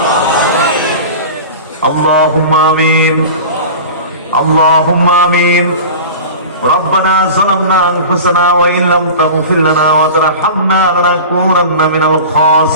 আল্লাহুম্মা আমিন, আল্লাহুম্মা আমিন। ربنا ظلمنا أنفسنا وإن لم تغفر لنا وترحمنا لنكونن من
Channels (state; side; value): inverted; both; correlation -0.34